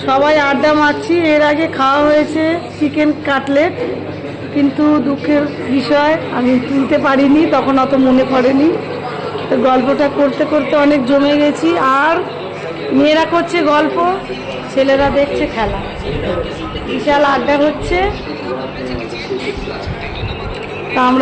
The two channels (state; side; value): identical; both; correlation 1.00